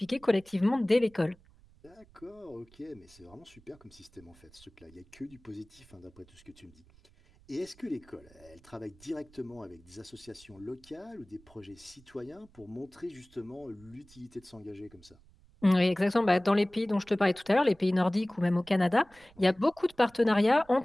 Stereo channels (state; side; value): noise; right; rumble, 26 dB below the sound